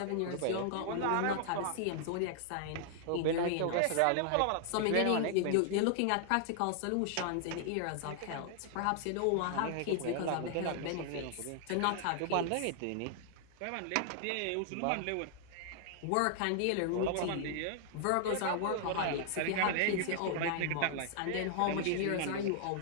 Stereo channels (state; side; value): different; both; correlation 0.00